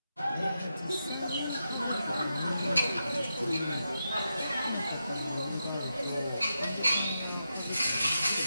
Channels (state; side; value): inverted; both; correlation -0.87